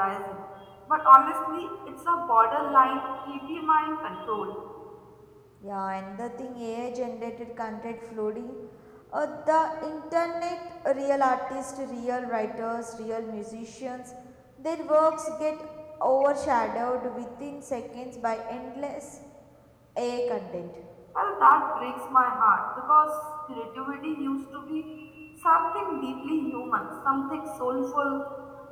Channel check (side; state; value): both; identical; correlation 1.00